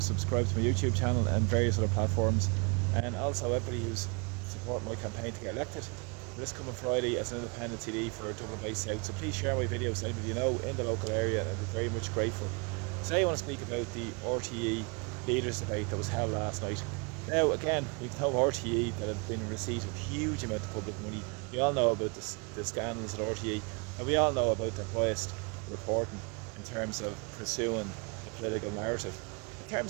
subscribed to my YouTube channel and various other platforms, and also everybody who's supporting my campaign to get elected for this coming Friday as an independent TD for Dublin Bay South. So please share my videos to anybody you know in the local area, and I'd be very much grateful. Today I want to speak about the RTE leaders debate that was held last night. Now again, we've no RTE that have been in receipt of huge amount of public money. We all know about the scandals at RTE, and we all know about their biased reporting in terms of pursuing the political narrative. In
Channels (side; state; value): left; quieter; 32.7 dB